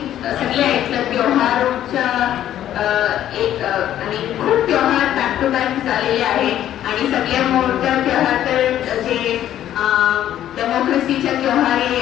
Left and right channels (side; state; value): right; quieter; 11.7 dB